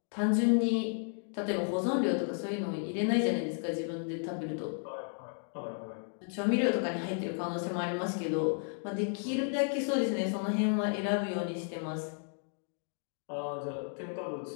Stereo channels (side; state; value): right; silent; 56 dB below the other